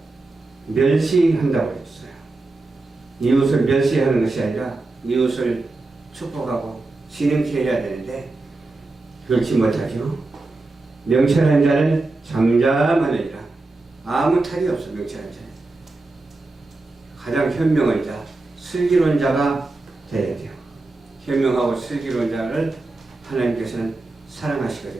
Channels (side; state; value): left; quieter; 3.2 dB